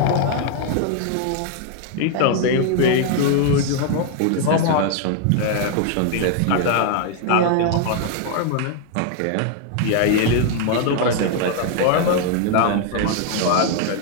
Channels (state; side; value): different; both; correlation 0.00